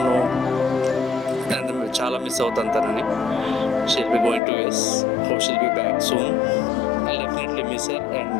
చాలా మిస్ అవుతాను తనని. She'll be going to US. Hope she'll be back soon. I definitely miss her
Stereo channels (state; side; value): drops out; right; at 4.4 s